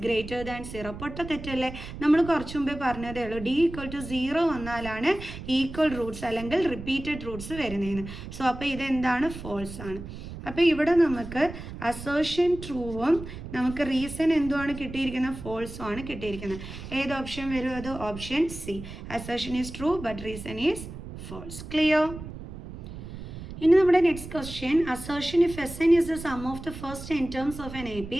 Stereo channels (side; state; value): right; noise; rumble, 11 dB below the sound